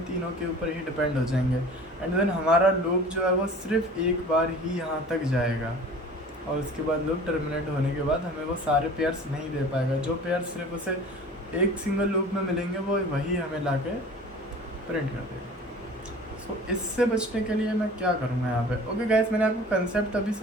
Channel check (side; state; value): both; normal; correlation 0.43